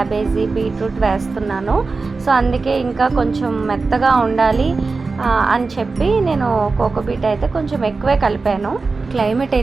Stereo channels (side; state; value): left; quieter; 4.1 dB